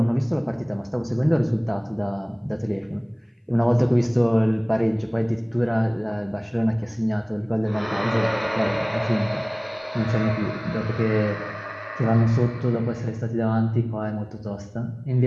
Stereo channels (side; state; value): both; identical; correlation 1.00